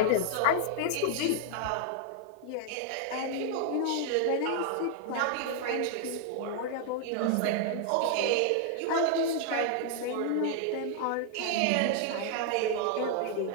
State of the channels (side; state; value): both; different; correlation 0.00